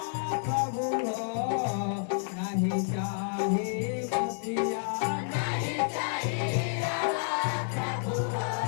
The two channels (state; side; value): silent; right; digital silence